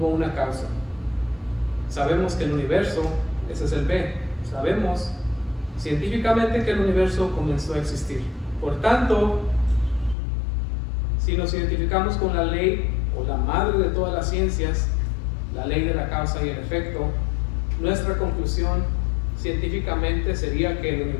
una causa. Sabemos que el universo, ese es el B, sabemos científicamente que el universo comenzó a existir. Por tanto, si nos identificamos con la ley o la madre de todas las ciencias, la ley de la causa y el efecto, nuestra conclusión científicamente sería que el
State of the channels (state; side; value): drops out; right; at 10.2 s